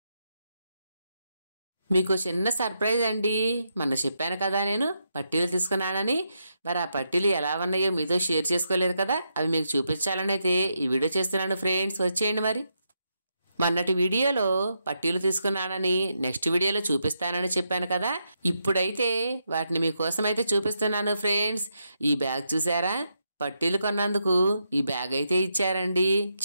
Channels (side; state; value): both; inverted; correlation -0.82